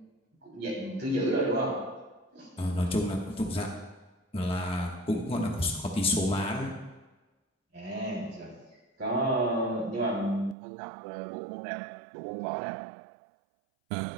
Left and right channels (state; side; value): drops out; left; at 10.6 s